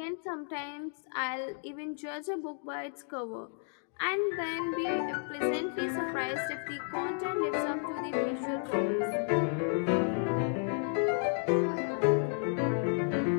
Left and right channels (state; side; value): silent; right; 56 dB below the other